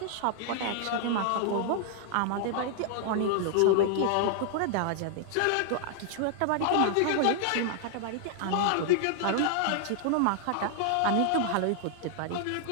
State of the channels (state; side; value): different; both; correlation 0.00